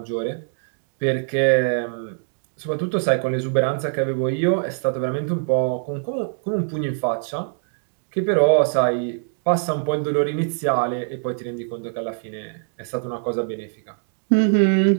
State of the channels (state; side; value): silent; left; digital silence